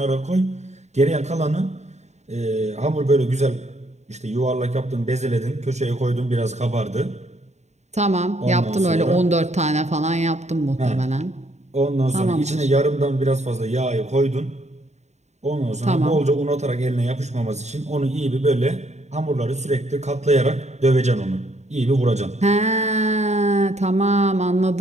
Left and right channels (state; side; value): late; left; 0.33 ms